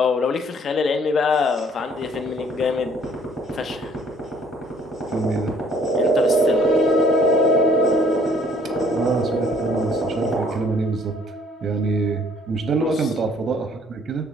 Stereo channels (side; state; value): both; normal; correlation 0.59